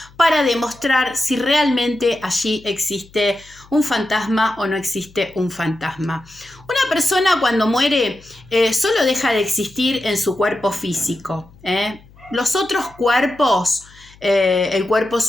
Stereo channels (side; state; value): left; noise; hum, 25 dB below the sound